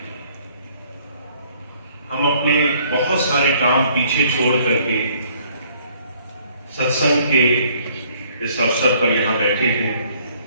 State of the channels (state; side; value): inverted; both; correlation -0.62